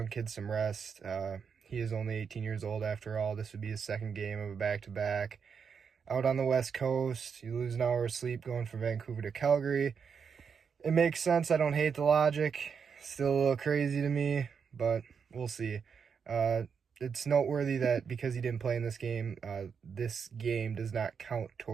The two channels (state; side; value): quieter; left; 6.4 dB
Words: kid some rest. He is only 18 years old after all. This would be his second game of a back-to-back. Out on the West Coast, you lose an hour of sleep going from Vancouver to Calgary. It makes sense. I don't hate the logic. Still a little crazy to me, but we'll see. It's noteworthy that because he didn't play in this game does not count